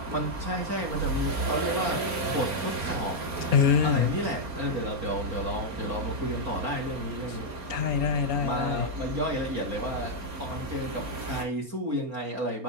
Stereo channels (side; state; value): left; late; 4.3 ms